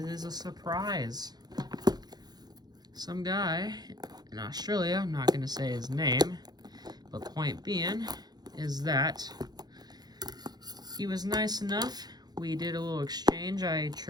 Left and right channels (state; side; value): late; left; 0.19 ms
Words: is a surprise. Some guy in Australia, I'm not gonna say his name, but point being is that he was nice enough. We did a little exchange. I